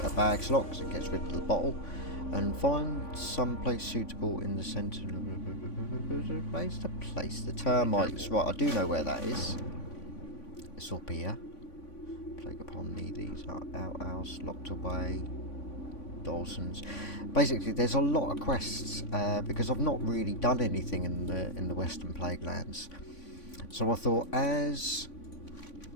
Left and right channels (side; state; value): right; late; 3.5 ms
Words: a bag slot because it gets rid of the bottle. And find some place suitable in the centre. Place to place the termites. Right, I do know where that is. It's up here. Plague upon thee. These are outhouse, locked away. Dawson's. Basically, there's a lot of quests because I've not really done anything in the Western Plaguelands. So I thought, as